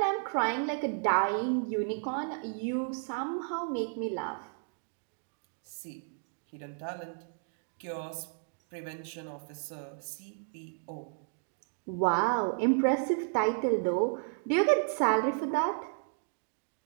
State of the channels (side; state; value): left; silent; 56 dB below the other